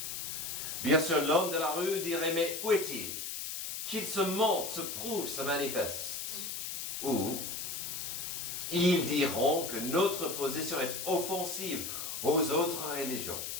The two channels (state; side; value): noise; left; hiss, 5 dB below the sound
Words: Bien sûr, l'homme de la rue dirait, mais où est-il? Qu'il se montre, se prouve, se manifeste. Ou ils diront que notre position est offensive aux autres religions.